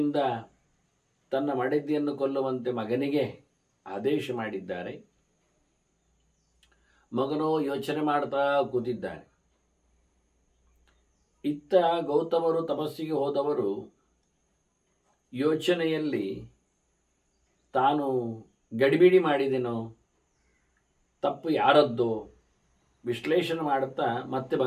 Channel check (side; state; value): both; identical; correlation 1.00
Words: ತನ್ನ ಮಡದಿಯನ್ನು ಕೊಲ್ಲುವಂತೆ ಮಗನಿಗೆ ಆದೇಶ ಮಾಡಿದ್ದಾರೆ. ಮಗನೋ ಯೋಚನೆ ಮಾಡ್ತಾ ಕೂತಿದ್ದಾನೆ. ಇತ್ತ ಗೌತಮರು ತಪಸ್ಸಿಗೆ ಹೋದವರು ಯೋಚನೆಯಲ್ಲಿ ತಾನು ಗಡಿಬಿಡಿ ಮಾಡಿದೆನೋ, ತಪ್ಪು ಯಾರದ್ದೋ ವಿಶ್ಲೇಷಣೆ ಮಾಡುತ್ತಾ ಮತ್ತೆ